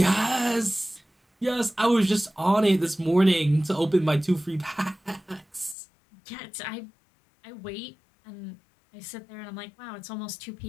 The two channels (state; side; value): drops out; right; at 5.8 s